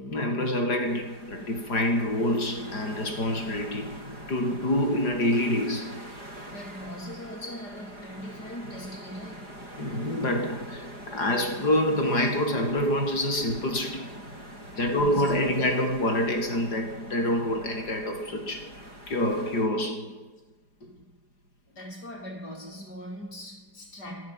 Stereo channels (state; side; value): late; right; 4.9 ms